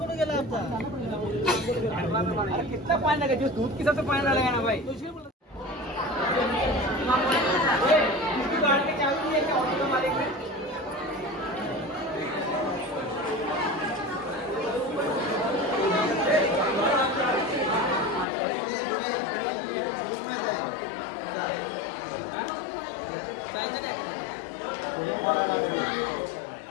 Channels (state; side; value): drops out; right; at 18.2 s